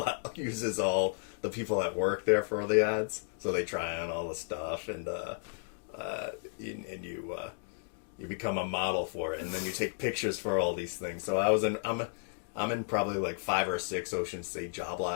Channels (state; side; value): silent; right; digital silence